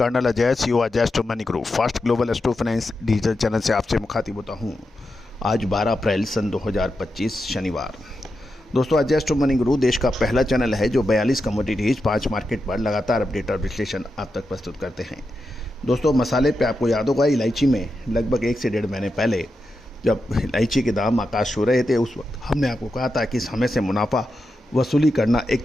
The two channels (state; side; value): normal; both; correlation 0.88